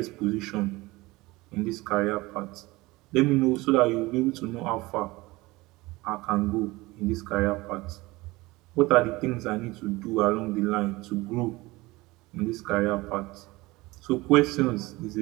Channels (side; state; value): left; quieter; 21.2 dB